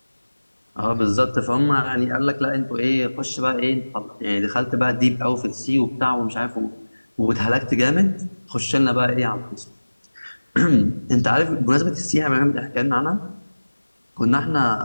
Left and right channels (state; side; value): inverted; both; correlation -1.00